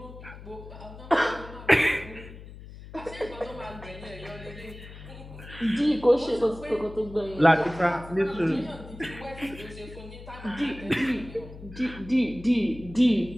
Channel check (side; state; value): left; noise; hum, 15 dB below the sound